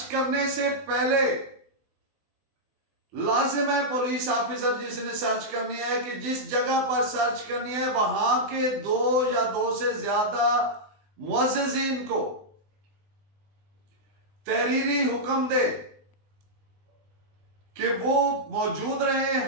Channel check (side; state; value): left; late; 20 ms